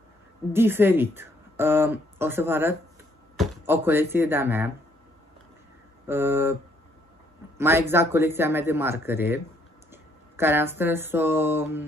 diferit. O să vă arăt o colecție de-a mea, mai exact colecția mea de marcare, care am strâns-o,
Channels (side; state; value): both; normal; correlation 0.68